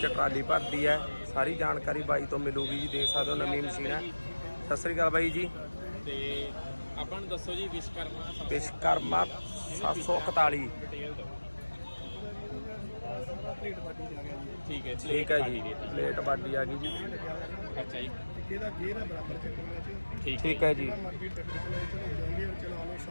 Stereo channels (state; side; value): inverted; both; correlation -1.00